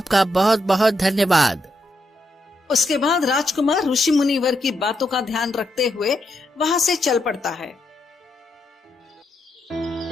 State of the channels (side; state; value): both; normal; correlation 0.81